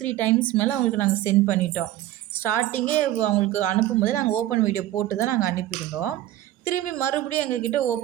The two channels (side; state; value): left; quieter; 14.0 dB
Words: டைம்ஸ் மேலே அவங்களுக்கு நாங்கள் சென்ட் பண்ணிட்டோம். ஸ்டார்டிங்கே அவங்களுக்கு அனுப்பும்போது நாங்கள் ஓப்பன் வீடியோ போட்டு தான் நாங்கள் அனுப்பியிருந்தோம். திரும்பி மறுபடியும் எங்ககிட்ட